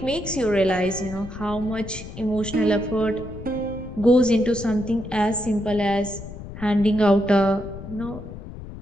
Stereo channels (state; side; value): noise; left; rumble, 12 dB below the sound